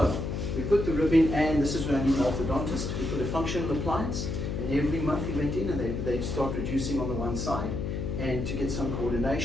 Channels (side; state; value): left; noise; hum, 3 dB below the sound